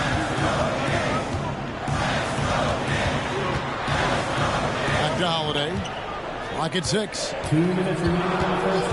Back to Holiday. Clock at 6. 2 minutes remaining in the first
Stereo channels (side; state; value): both; identical; correlation 1.00